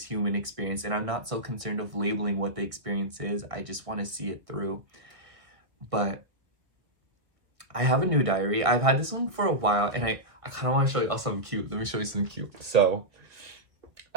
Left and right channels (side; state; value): left; late; 1.6 ms